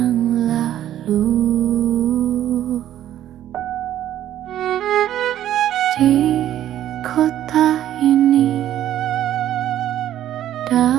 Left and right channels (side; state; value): left; quieter; 11.9 dB